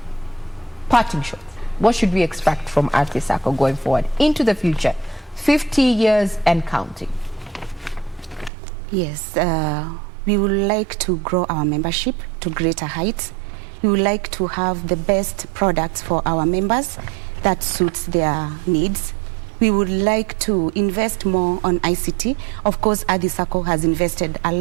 Parting shot. what should we expect from Athi Sacco going forward into the future, 50 years and counting? Yes, we would like to grow our membership to greater heights. We would like to have the best products for our members that suits their needs. We would like to invest more on ICT. Of course, Athi Sacco has invested a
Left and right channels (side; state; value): left; drops out; at 8.5 s